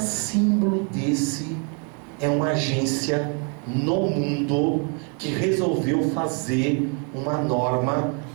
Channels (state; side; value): quieter; left; 38.1 dB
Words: desse é uma agência no mundo que resolveu fazer uma norma